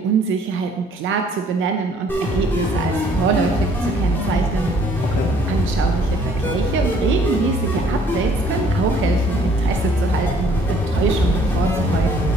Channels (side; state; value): both; normal; correlation 0.60